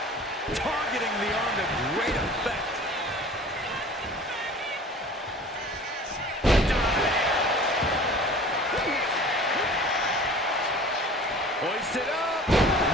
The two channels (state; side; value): normal; both; correlation 0.44